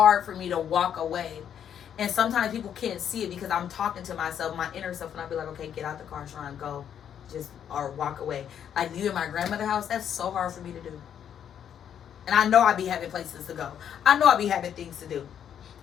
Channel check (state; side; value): quieter; right; 9.0 dB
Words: for me to walk away. And sometimes people can't see it because I'm talking to myself, my inner self, and I be like, okay, get out the car, Sharon, go. Just, or walk away. Like, you in my grandmother's house, that's so hard for me to do. And I know I be having places to go. I know I be having things to do.